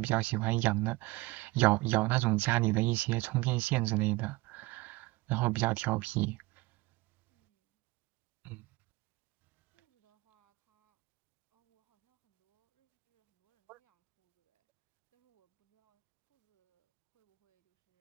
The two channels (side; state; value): left; quieter; 21.8 dB